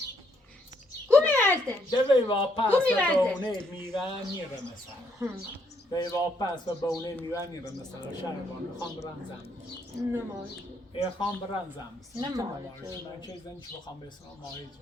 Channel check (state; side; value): normal; both; correlation 0.72